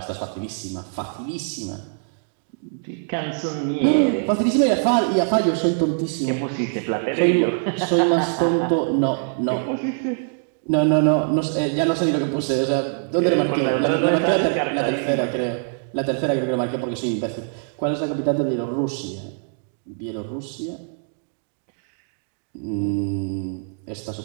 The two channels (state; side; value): silent; left; digital silence